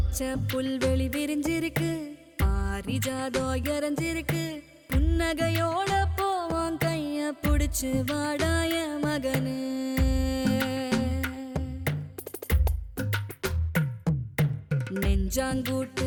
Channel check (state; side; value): identical; both; correlation 1.00